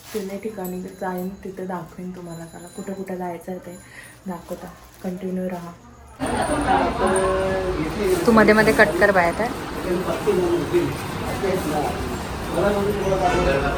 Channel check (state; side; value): identical; both; correlation 1.00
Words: 3 ठिकाणी जाईन, तिथे दाखवेन तुम्हाला. चला कुठं कुठं जायचं आहे ते दाखवता. कंटिन्यू राहा. तू मध्ये मध्ये कट कर बाय आता.